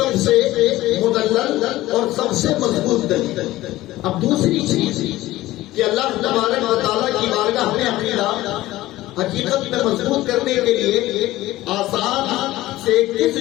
سے مدلل اور سب سے مضبوط دلیل۔ اب دوسری چیز کہ اللہ تبارک و تعالیٰ کی بارگاہ میں عقیدہ حقیقت میں مضبوط کرنے کے لیے آسان سے کس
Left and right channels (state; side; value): quieter; right; 16.6 dB